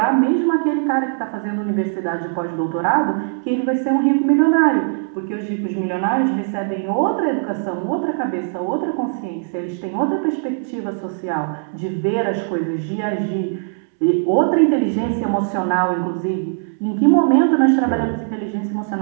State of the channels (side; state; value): left; silent; 66 dB below the other